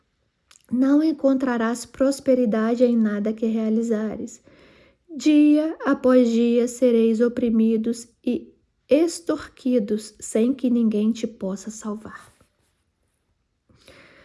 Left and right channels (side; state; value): both; identical; correlation 1.00